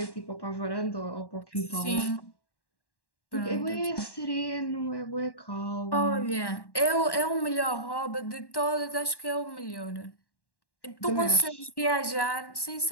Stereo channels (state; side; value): late; right; 1.1 ms